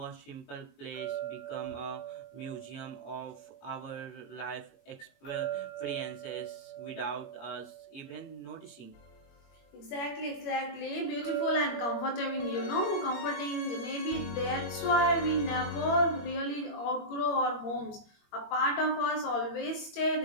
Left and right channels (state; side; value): late; right; 21 ms